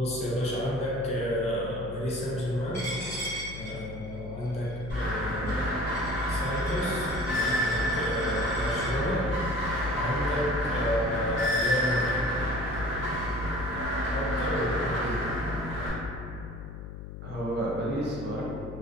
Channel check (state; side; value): noise; left; hum, 10 dB below the sound